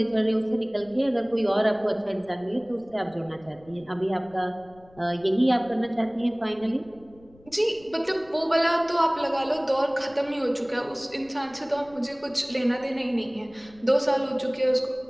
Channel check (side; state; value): left; noise; rumble, 26 dB below the sound